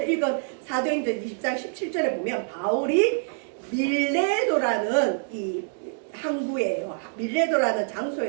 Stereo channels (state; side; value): silent; left; digital silence